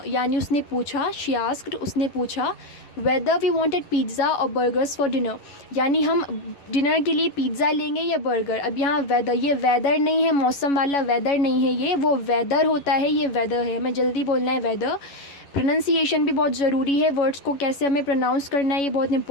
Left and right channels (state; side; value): late; right; 11 ms